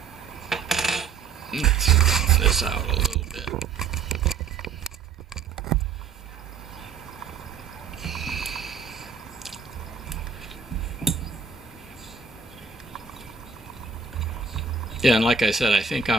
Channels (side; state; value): left; quieter; 5.9 dB